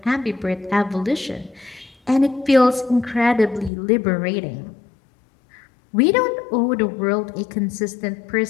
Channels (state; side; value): drops out; right; at 3.7 s